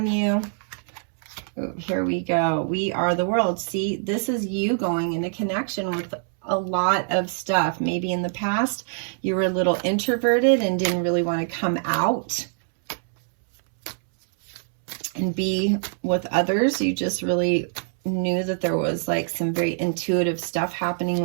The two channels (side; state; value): left; silent; 63 dB below the other